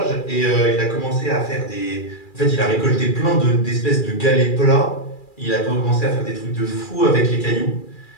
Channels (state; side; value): late; right; 2.4 ms